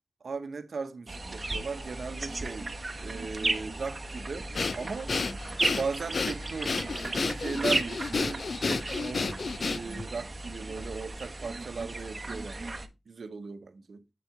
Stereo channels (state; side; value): normal; both; correlation 0.91